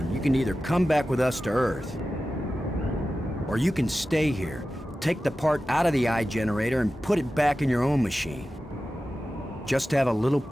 you can either come back with us to Earth, or you can stay here, take the part out of the eye generator and put it back in your own machine. Just have a little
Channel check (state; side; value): normal; both; correlation 0.94